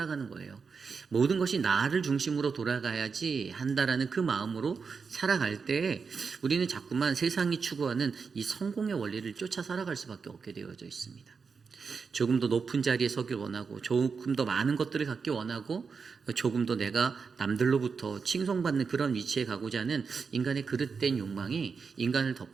거예요. 모든 것이 나를 중심으로 돌아가야지 한다라는 그 마음으로 살아갈 때 우리는 자꾸만 세상이 추구하는 이 성공의 원리를 쫓아 살아갈 수밖에 없게 되어져 있습니다. 조금 더 높은 자리에 서길 원하고, 조금 더 많은 것들을 갖기 원하고, 조금 더 내가 남들로부터 칭송받는 그런 위치에 가고자 하는 인간의 그릇된 욕망이 인간을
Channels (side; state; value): left; quieter; 5.4 dB